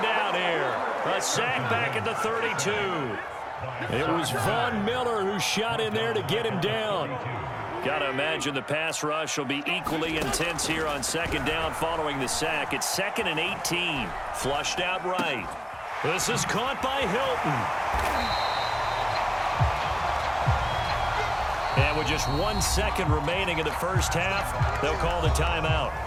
down here. A sack back at the 32. It was Von Miller who shot in there to get him down. Got to imagine the pass rush will be equally intense here on 2nd down following the sack. It's 2nd and 18. Flushed out right. This is caught by Hilton. And with just 1 second remaining in the first half, they'll call the timeout.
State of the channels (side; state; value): both; identical; correlation 1.00